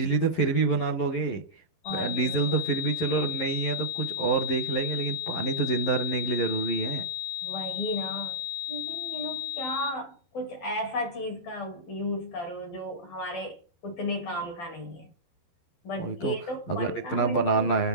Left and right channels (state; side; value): late; right; 11 ms